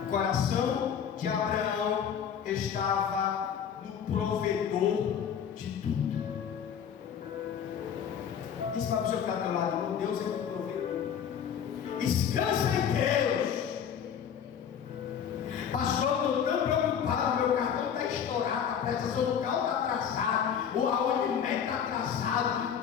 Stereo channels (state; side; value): quieter; right; 8.1 dB